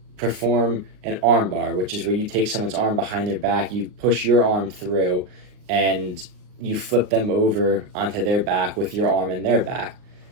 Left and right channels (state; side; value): late; left; 39 ms